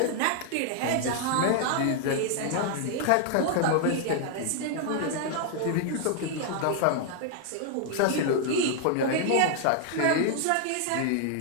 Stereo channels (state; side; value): different; both; correlation 0.00